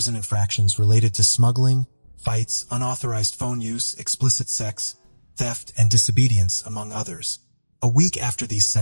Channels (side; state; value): both; inverted; correlation -1.00